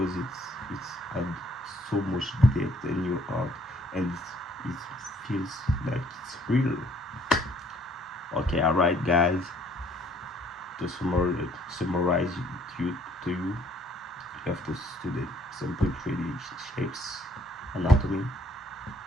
it's add so much depth in your art, and it feels like it's real. Okay, alright guys, to summarize to you have to study simple 3D shapes, anatomy,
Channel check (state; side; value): normal; both; correlation 0.63